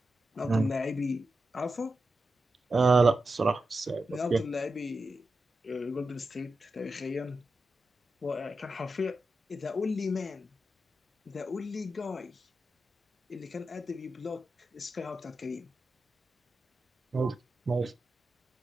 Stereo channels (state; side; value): normal; both; correlation 0.90